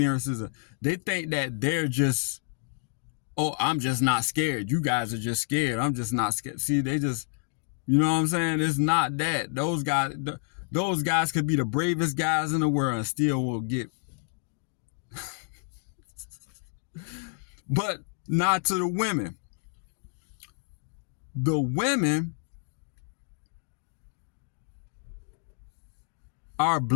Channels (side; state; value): right; silent; digital silence